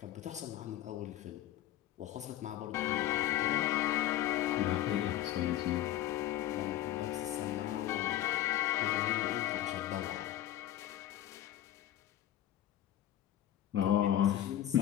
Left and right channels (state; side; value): quieter; right; 13.0 dB